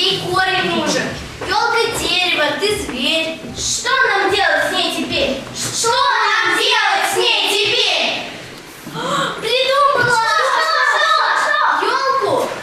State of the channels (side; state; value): both; identical; correlation 1.00